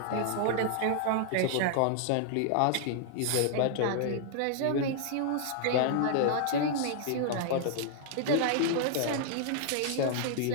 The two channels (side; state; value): both; different; correlation -0.01